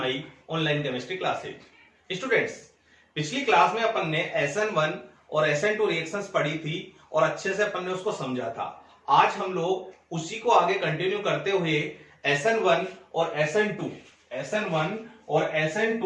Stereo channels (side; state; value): both; identical; correlation 1.00